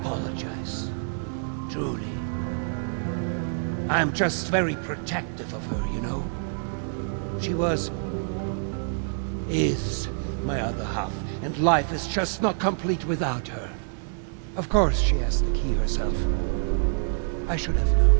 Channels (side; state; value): left; silent; digital silence